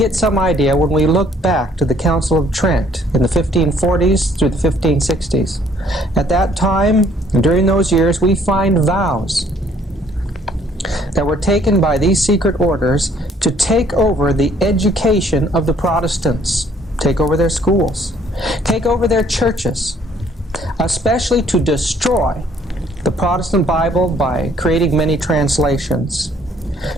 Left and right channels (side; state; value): both; normal; correlation 0.62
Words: some idea when we look back to the Council of Trent in the 1540s through the 1560s. At that time, during those years, we find vows that were taken by these secret orders to take over the education of the Protestants, take over their schools, take over their churches, especially to destroy the Protestant Bible by creating many translations,